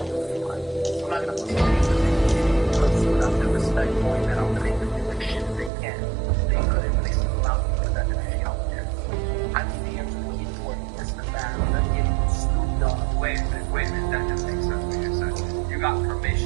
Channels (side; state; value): left; drops out; at 5.7 s